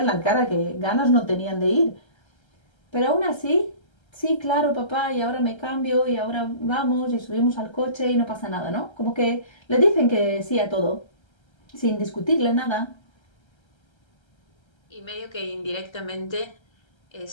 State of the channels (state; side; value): late; right; 1.3 ms